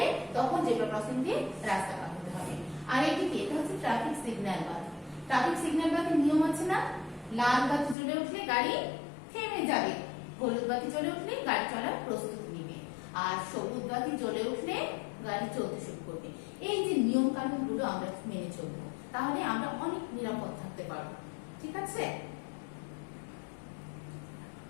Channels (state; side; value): drops out; right; at 8.0 s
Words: তখন জেব্রা ক্রসিং দিয়ে রাস্তা পার হতে হবে। আর এদিকে এটা হচ্ছে ট্রাফিক সিগন্যাল বাতি। ট্রাফিক সিগন্যাল বাতির নিয়ম আছে না? লাল বাতি জ্বলে উঠলে গাড়ি থেমে যাবে, হলুদ বাতি জ্বলে উঠলে গাড়ি চলার প্রস্তুতি নেবে, আর সবুজ বাতি জ্বলে উঠলে গাড়ি চলতে শুরু করবে। এই যে নিয়ম কানুন গুলো আমরা মেনে চলবো, তাহলে আমরা অনেক নিরাপদ থাকতে পারবো। ঠিক আছে?